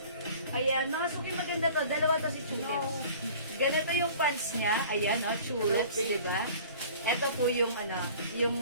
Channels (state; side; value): inverted; both; correlation -0.46